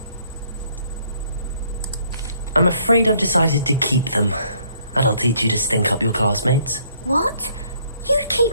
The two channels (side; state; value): both; inverted; correlation -0.65